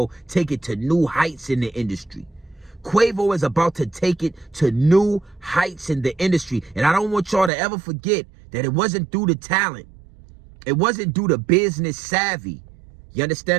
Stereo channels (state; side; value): drops out; left; at 7.5 s